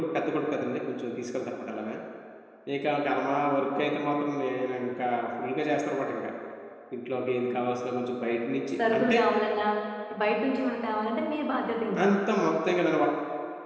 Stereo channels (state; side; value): identical; both; correlation 1.00